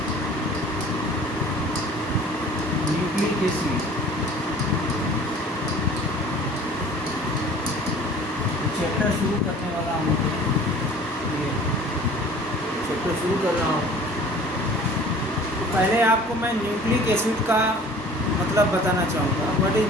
nucleic acid chapter शुरू करने वाला हूँ। ये चैप्टर शुरू कर रहा हूँ। तो पहले आपको मैं न्यूक्लिक एसिड का मतलब बताना चाहूँगा। What is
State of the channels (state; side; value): normal; both; correlation 0.47